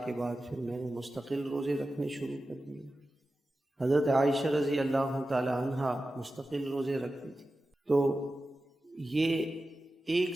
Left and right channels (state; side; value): normal; both; correlation 0.93